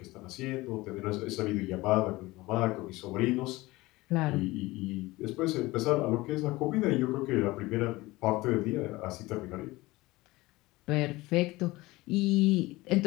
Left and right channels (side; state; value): right; quieter; 20.2 dB